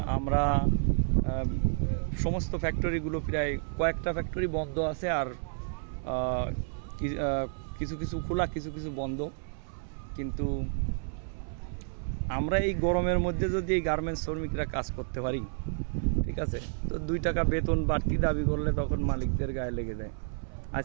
আমরা সমস্ত ফ্যাক্টরিগুলো প্রায় কয়েকটা ফ্যাক্টরি বন্ধ আছে, আর কিছু কিছু খোলা, কিছু কিছু বন্ধ। কিন্তু আমরা এই গরমের মধ্যে যদি এই গার্মেন্টস শ্রমিকরা কাজ করতে পারি, ঠিক আছে, তো 2 টাকা বেতন বাড়তি দাবি করলে তখন মালিকদের গায়ে লেগে যায়।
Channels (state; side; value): silent; left; 57 dB below the other